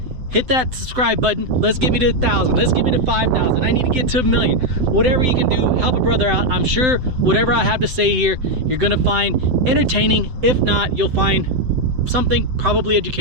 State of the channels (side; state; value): left; late; 7.9 ms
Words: Hit that subscribe button. Let's get me to 1,000. Let's get me to 5,000. I need to get to 1,000,000. Whatever you can do, help a brother out. I'm sure whatever I have to say here, you're gonna find entertaining. If not, you'll find something probably